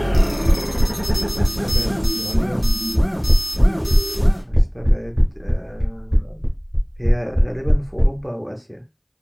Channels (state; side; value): identical; both; correlation 1.00